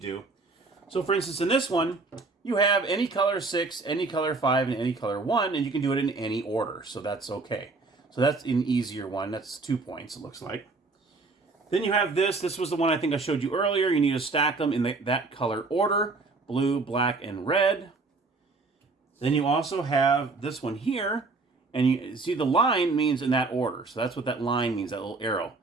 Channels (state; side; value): quieter; left; 3.8 dB